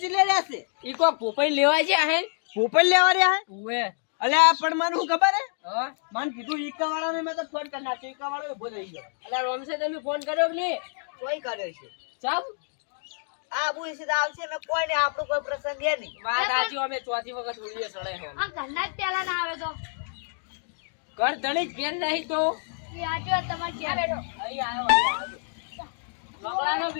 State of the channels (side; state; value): right; silent; digital silence